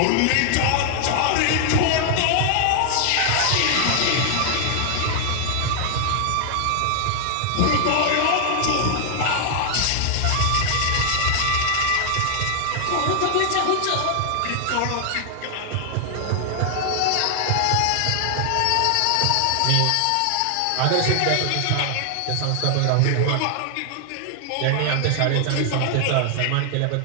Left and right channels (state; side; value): different; both; correlation 0.00